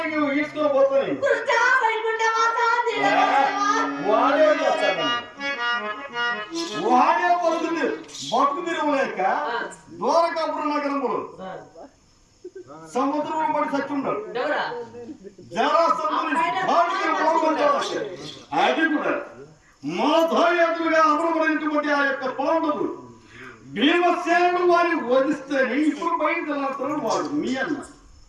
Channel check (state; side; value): identical; both; correlation 1.00